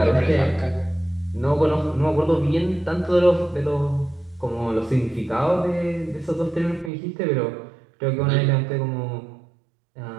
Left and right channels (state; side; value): drops out; left; at 6.9 s